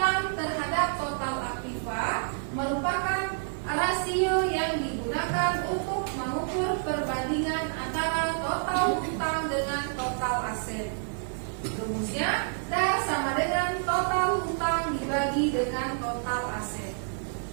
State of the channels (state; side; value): silent; left; digital silence